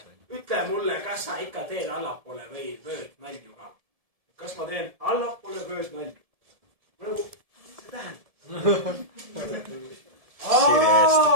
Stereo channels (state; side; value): late; left; 1.7 ms